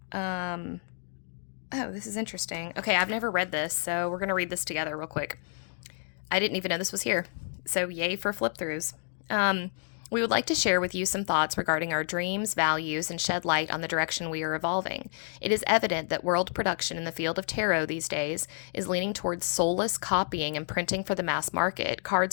Oh, this is interesting. Okay, I've never read this, so we're going to read this together real quick. I didn't even know this was here. So yay for flip throughs. We would like to share with you some thoughts regarding our dreams, values, and shed light on the direction we are evolving. It is evident that world production in the field of tarot these days is leaning towards soulless copying and printing for the mass market. Cards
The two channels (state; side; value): silent; right; digital silence